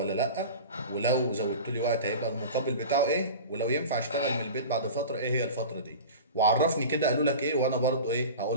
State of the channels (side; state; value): both; inverted; correlation -0.33